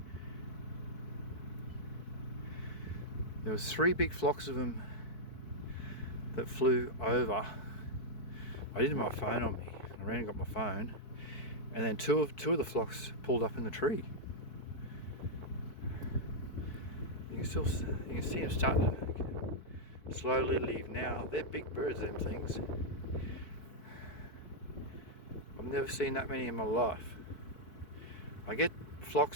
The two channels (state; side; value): late; right; 4.6 ms